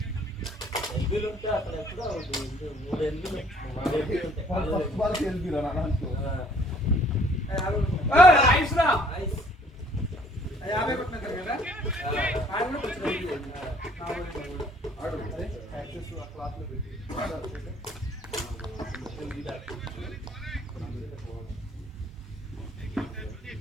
ఎల్బీలు ఉంటే అక్కడ ఎప్పుడో 3 ఎల్బీలు ఫస్ట్ బాల్ వెళ్ళిరా నా దాంట్లో. ఐస్ రా 50 కొట్టినారు కదా ఆయన కూడా కొంచెం ఆడు యాక్సెస్ ఆ క్లాత్ లో పెట్టి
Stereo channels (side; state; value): both; normal; correlation 0.59